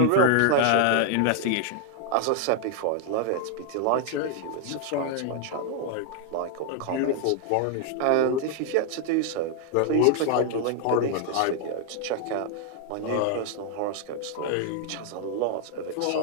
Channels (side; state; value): both; different; correlation 0.00